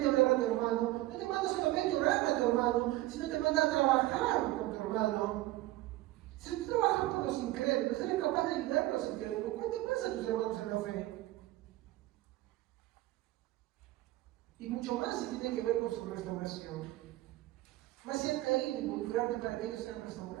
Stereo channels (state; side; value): quieter; left; 17.4 dB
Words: a hablar a tu hermano, no te manda solamente a orar a tu hermano, sino te manda a trabajar con tu hermano. Si tú trabajas por los incrédulos, eres capaz de ayudar a los incrédulos, ¿cuánto pasa a tus hermanos en la fe? Y mucho más si tiene que ver con su restauración. Más si han caído, involucrarte para que ellos sean